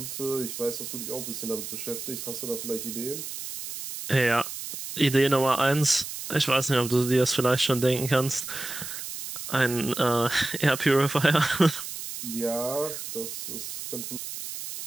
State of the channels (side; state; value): right; noise; hiss, 8 dB below the sound